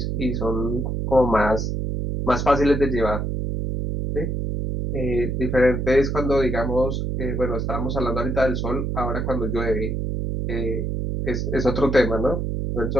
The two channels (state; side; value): noise; right; hum, 1 dB below the sound